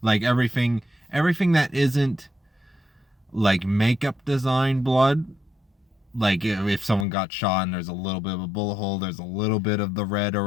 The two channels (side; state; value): right; drops out; at 7.1 s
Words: like everything that isn't like makeup design blood, like if someone got shot and there's a little bit of a bullet hole, there's a little bit of the red